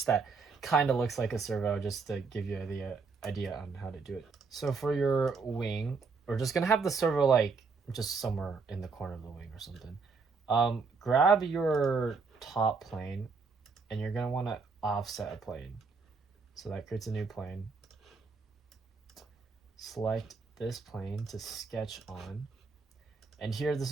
that kind of looks like a servo just to give you the idea on how to do it. So for your wing, we're just gonna have the servo like just somewhere in the corner of the wing or something. Grab your top plane and you're gonna want to offset a plane. So that creates a new plane. Select this plane to sketch on. And here, this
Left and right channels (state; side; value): quieter; left; 4.7 dB